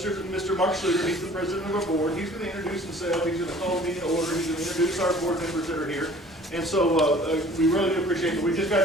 Mark Schluter. He's the president of our board. He's going to introduce himself. He's going to call a meeting to order. He's going to introduce our board members that are here. And so we really do appreciate it. We just got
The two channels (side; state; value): both; normal; correlation 0.50